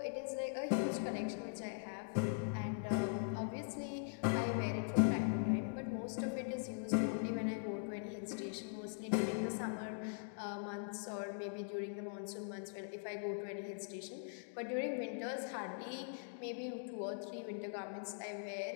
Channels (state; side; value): silent; right; digital silence